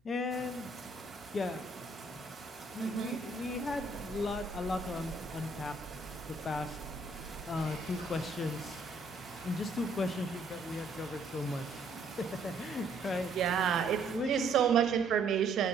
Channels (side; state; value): left; quieter; 3.1 dB